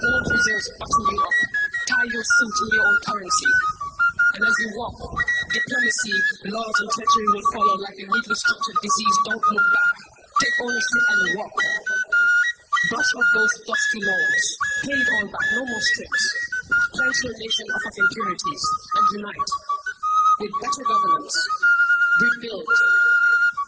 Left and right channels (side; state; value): both; identical; correlation 1.00